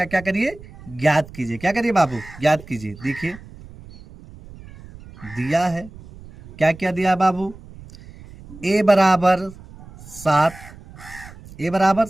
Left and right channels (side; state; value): right; noise; rumble, 19 dB below the sound